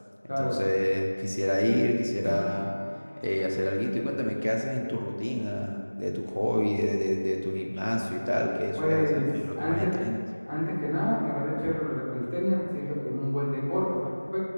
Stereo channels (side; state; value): both; inverted; correlation -1.00